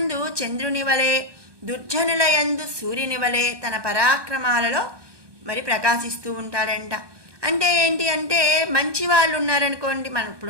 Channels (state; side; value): late; left; 1.2 ms